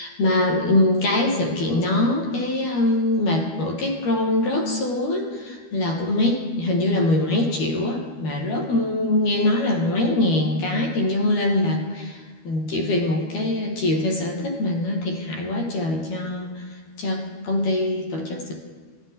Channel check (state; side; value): late; right; 12 ms